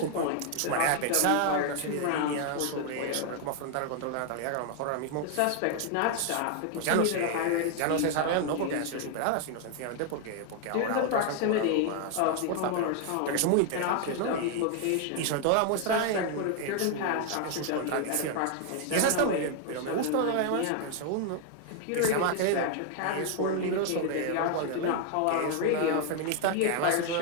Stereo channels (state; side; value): different; both; correlation 0.00